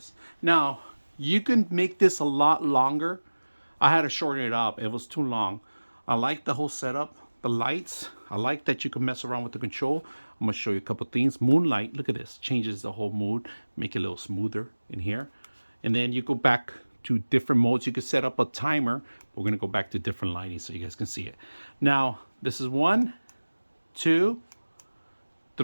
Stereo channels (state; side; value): inverted; both; correlation -1.00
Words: Now, you can make this a lot longer. I had to shorten it up. It was too long. I like the whole setup. The lights, I like that you can mess around with the control. I'm gonna show you a couple things. Moonlight, look at this. Changes the whole mood. Make it a little smoother in here. And then you go back to different modes. You can set up a timer. We're gonna go back to different lighting so you guys can see it. Now, this is 1, 2,